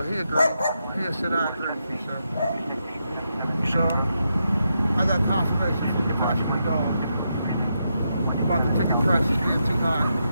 he agreed. He said, I agree with you, sir. So, I got confirmation from the passenger dog about the ticket prices being too high.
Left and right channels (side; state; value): both; inverted; correlation -0.83